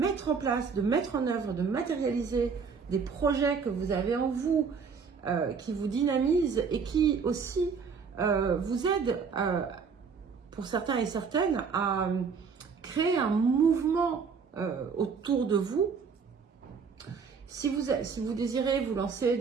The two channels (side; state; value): left; quieter; 5.7 dB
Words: en place, de mettre en œuvre, de matérialiser des projets que vous avez en vous, qui vous dynamisent et qui aussi vous aident, pour certains et certaines, à créer un mouvement autour de vous. Si vous désirez vous lancer